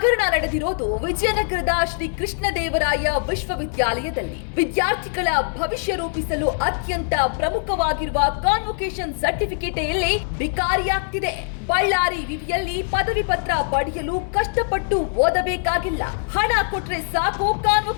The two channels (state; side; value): silent; right; 61 dB below the other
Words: ನಡೆದಿರೋದು ವಿಜಯನಗರದ ಶ್ರೀ ಕೃಷ್ಣದೇವರಾಯ ವಿಶ್ವವಿದ್ಯಾಲಯದಲ್ಲಿ. ವಿದ್ಯಾರ್ಥಿಗಳ ಭವಿಷ್ಯ ರೂಪಿಸಲು ಅತ್ಯಂತ ಪ್ರಮುಖವಾಗಿರುವ ಕಾನ್ವೊಕೇಶನ್ ಸರ್ಟಿಫಿಕೇಟ್ ಇಲ್ಲಿ ಬಿಕಾರಿಯಾಗ್ತಿದೆ. ಬಳ್ಳಾರಿ ವಿವಿಯಲ್ಲಿ ಪದವಿ ಪತ್ರ ಪಡೆಯಲು ಕಷ್ಟಪಟ್ಟು ಓದಬೇಕಾಗಿಲ್ಲ. ಹಣ ಕೊಟ್ರೆ ಸಾಕು,